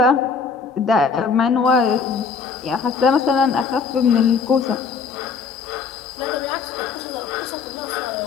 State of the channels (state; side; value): quieter; right; 5.4 dB